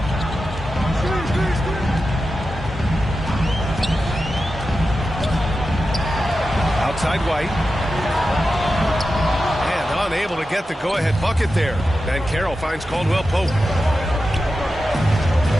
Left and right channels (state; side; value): normal; both; correlation 0.91